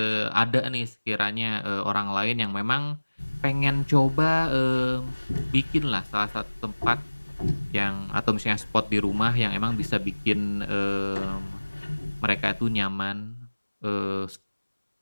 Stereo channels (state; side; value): inverted; both; correlation -1.00